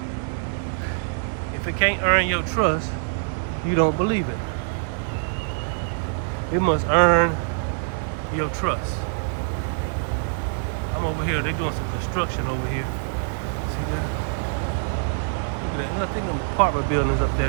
If it can't earn your trust, you don't believe it. It must earn your trust. I'm over here, they're doing some construction over here. See that? Look at that. I think them apartment buildings up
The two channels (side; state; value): left; silent; 62 dB below the other